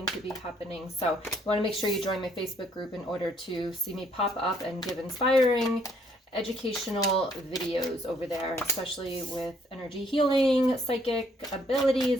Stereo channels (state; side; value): normal; both; correlation 0.66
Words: to be happening. So you want to make sure you join my Facebook group in order to see me pop up and give inspiring, educational videos over there, especially with energy healing, psychic